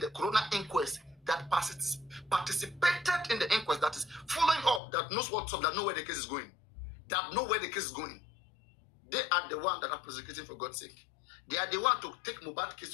the coroner inquest that participated in the inquest, that is following up, that knows what's up, that know where the case is going. That know where the case is going. They are the one that are prosecuting, for God's sake. They are the one to take Mohbad's case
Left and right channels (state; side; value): drops out; right; at 4.8 s